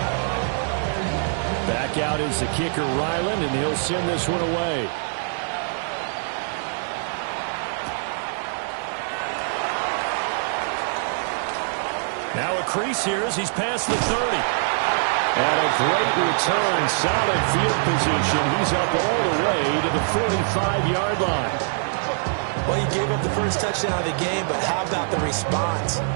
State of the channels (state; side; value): silent; left; digital silence